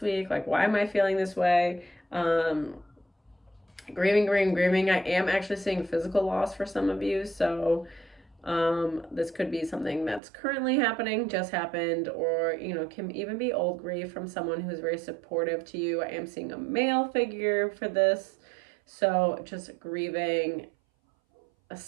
week? Like, why am I feeling this way? Grieving. I am actually seeing physical loss for some of you. So this could be something that's currently happening, just happened, or, you know, can even be old grief from someone who's very supportive to you. I am seeing a male figure for this. So just grieving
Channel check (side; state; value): left; drops out; at 10.2 s